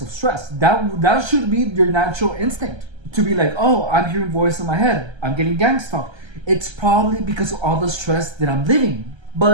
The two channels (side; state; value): left; late; 1.3 ms